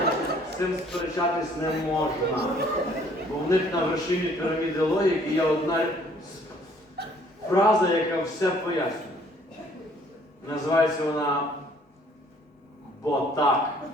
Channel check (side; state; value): both; normal; correlation 0.60